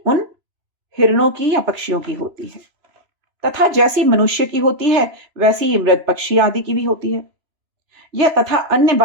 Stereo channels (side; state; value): left; late; 3.0 ms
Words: हिरणों की या पक्षियों की होती है, तथा जैसी मनुष्य की होती है वैसी ही मृग, पक्षी आदि की भी होती है। यह तथा अन्य